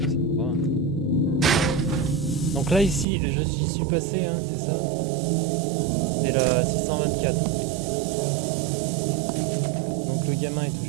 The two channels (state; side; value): drops out; left; at 3.1 s